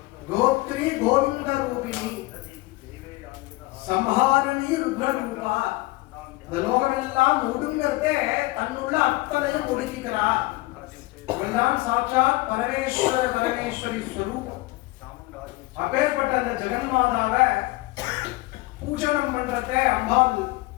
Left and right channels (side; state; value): right; quieter; 20.8 dB